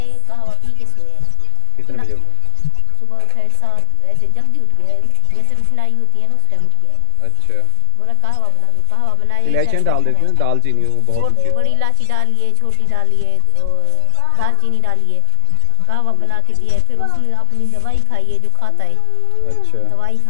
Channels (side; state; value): both; different; correlation 0.00